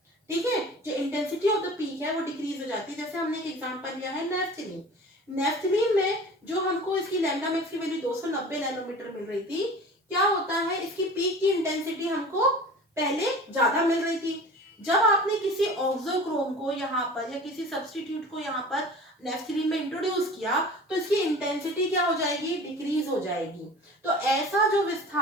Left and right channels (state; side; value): normal; both; correlation 0.40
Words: ठीक है, जो इंटेंसिटी ऑफ द पीक है वो डिक्रीज हो जाती है। जैसे हमने एक एग्जांपल लिया है नेफ्थलीन, नेफ्थलीन में जो हमको इसकी लैम्डा मैक्स की वैल्यू 290 नैनोमीटर मिल रही थी, क्या होता है, इसकी पीक की इंटेंसिटी हमको पहले ज्यादा मिल रही थी। जब आपने किसी ऑक्सोक्रोम को यहाँ पर या किसी सब्स्टिट्यूट को यहाँ पर नेफ्थलीन में इंट्रोड्यूस किया तो इसकी इंटेंसिटी क्या हो जाएगी, डिक्रीज हो जाएगी। तो ऐसा जो